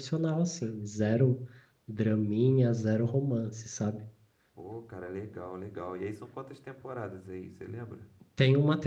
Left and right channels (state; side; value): identical; both; correlation 1.00